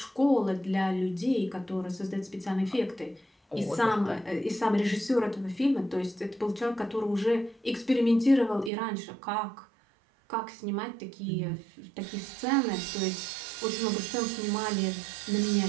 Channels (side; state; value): left; drops out; at 8.7 s